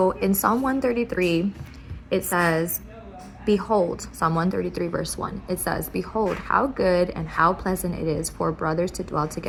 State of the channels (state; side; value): identical; both; correlation 1.00